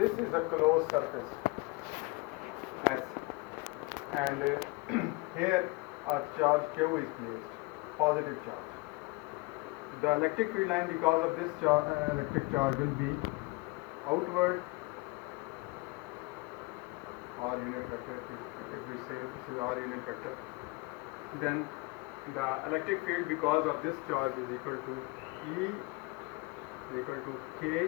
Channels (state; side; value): quieter; right; 24.5 dB